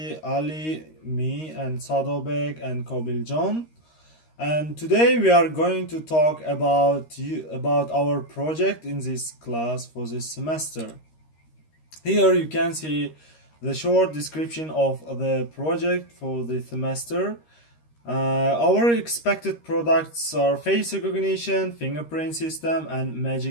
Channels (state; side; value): late; right; 13 ms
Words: Ali, me, and Sadobek and Kobil John. And today we are going to talk about our project in this class for this semester. Here you can see the short description of the project for the semester. Our expected products are face recognition, fingerprint system, and